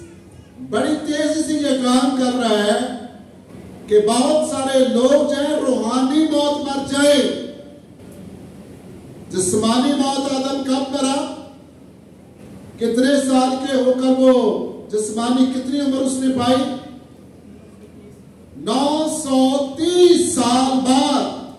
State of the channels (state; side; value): identical; both; correlation 1.00